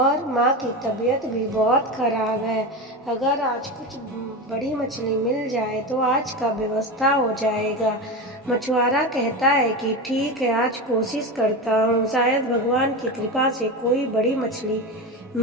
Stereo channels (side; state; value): both; normal; correlation 0.21